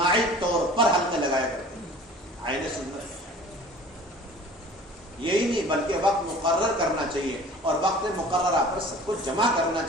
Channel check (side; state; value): both; normal; correlation 0.45